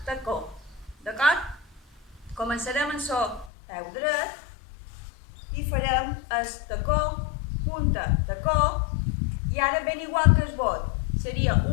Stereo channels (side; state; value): right; drops out; at 3.5 s